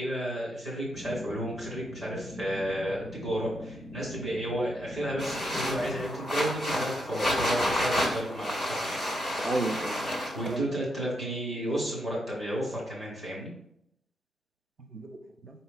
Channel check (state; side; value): normal; both; correlation 0.79